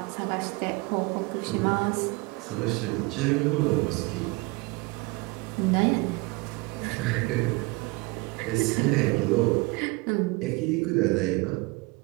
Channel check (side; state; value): left; quieter; 25.4 dB